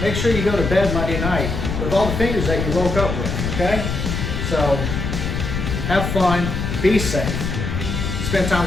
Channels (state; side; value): noise; left; rumble, 3 dB below the sound